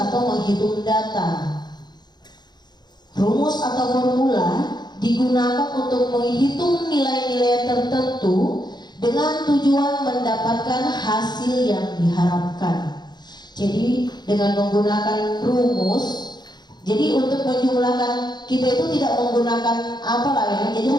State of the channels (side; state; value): right; late; 0.21 ms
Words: menghitung data. Rumus atau formula digunakan untuk menghitung nilai-nilai tertentu dengan tujuan mendapatkan hasil yang diharapkan. Jadi dengan menggunakan rumus, jadi untuk menjumlahkan kita itu tidak menggunakan apalah ya, jadi